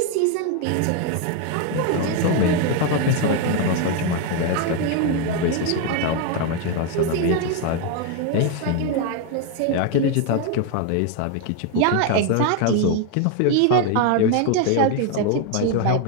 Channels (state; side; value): different; both; correlation 0.01